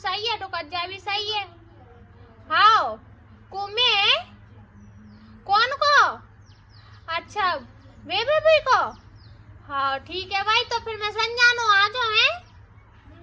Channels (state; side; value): identical; both; correlation 1.00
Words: है, टुकज्जा भी सही है। हाँ कुमे कौन को? अच्छा वे भी को। हाँ ठीक है भाई, तो फिर मैं संजानो आ जाओ है।